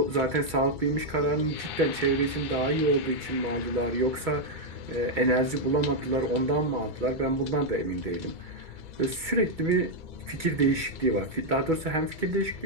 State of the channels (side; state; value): left; late; 2.3 ms